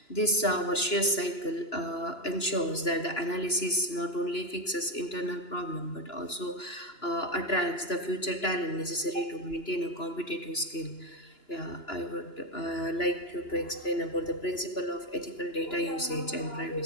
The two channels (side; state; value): right; late; 2.9 ms